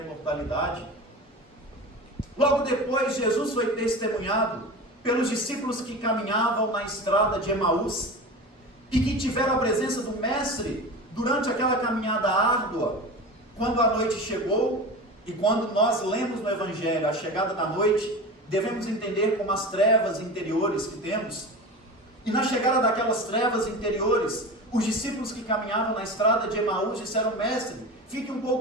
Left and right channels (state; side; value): normal; both; correlation 0.31